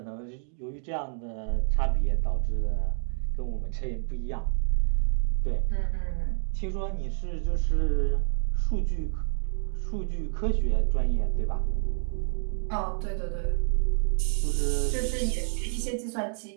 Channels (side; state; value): left; silent; 59 dB below the other